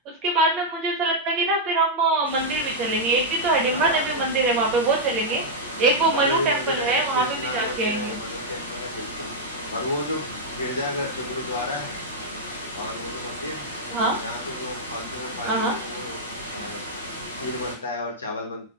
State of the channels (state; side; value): normal; both; correlation -0.05